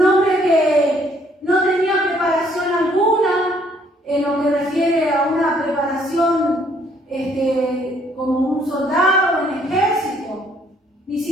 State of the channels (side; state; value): both; normal; correlation 0.65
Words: hombre que no tenía preparación alguna en lo que refiere a una preparación como un soldado en el ejército. Ni